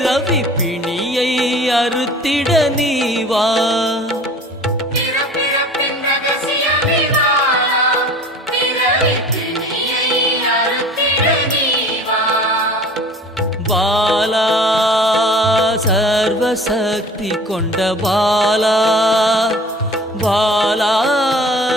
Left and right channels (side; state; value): both; normal; correlation 0.44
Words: பிணியை அறுத்திட நீவா பிறப்பிறப்பின் ரகசியமே பாலா பிறவி பிணியை அறுத்திட நீவா பாலா சர்வசக்தி கொண்ட பாலா பாலா